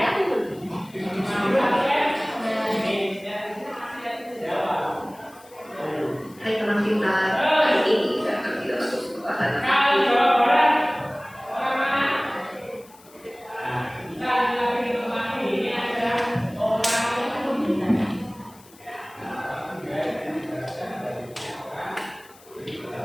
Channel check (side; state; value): left; noise; hiss, 25 dB below the sound